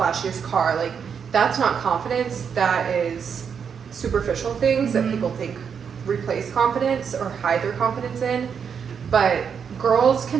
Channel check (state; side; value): quieter; left; 6.9 dB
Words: car. Like that's not confidence. That is superficial things that people think replace confidence or hide their confidence in. But girls